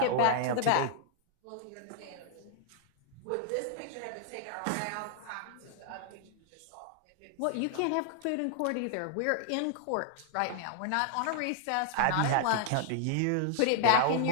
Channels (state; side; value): different; both; correlation -0.01